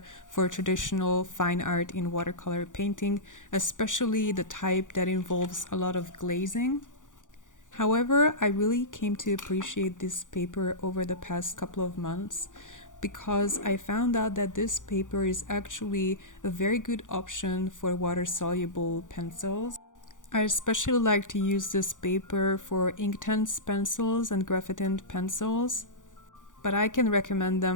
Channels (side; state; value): right; late; 0.87 ms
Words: for traditional fine art in watercolor painting, especially the type that involves a lot of glazing. However, I really came to appreciate this paper over the past couple of months because I found out that this paper is actually a very good option for water-soluble pencils. I especially like to use this paper for Inktense pencils and graphite pencils, but I can recommend